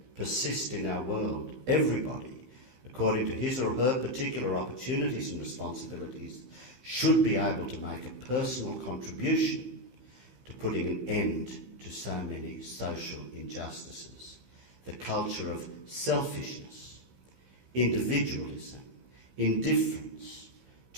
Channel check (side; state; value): left; late; 15 ms